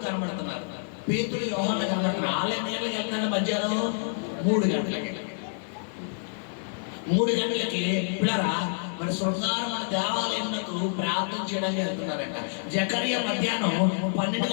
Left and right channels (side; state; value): right; silent; digital silence